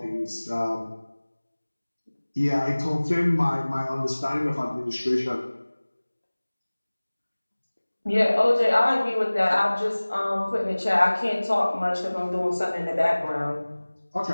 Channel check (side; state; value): both; inverted; correlation -1.00